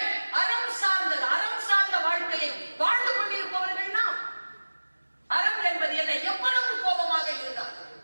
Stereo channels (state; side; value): inverted; both; correlation -1.00